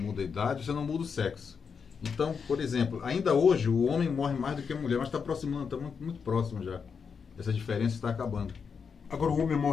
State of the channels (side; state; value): right; quieter; 6.1 dB